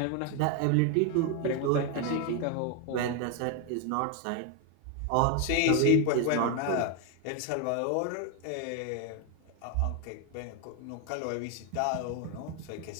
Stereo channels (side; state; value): both; different; correlation 0.01